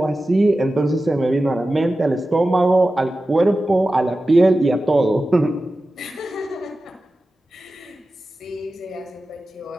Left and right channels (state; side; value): normal; both; correlation 0.94